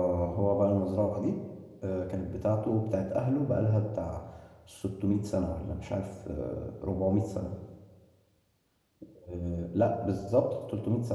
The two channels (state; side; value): identical; both; correlation 1.00